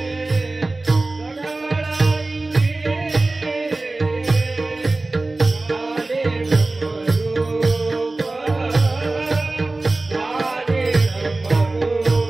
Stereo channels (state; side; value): quieter; left; 3.1 dB